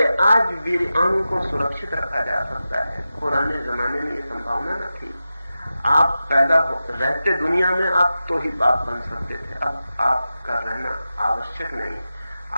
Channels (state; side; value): inverted; both; correlation -0.93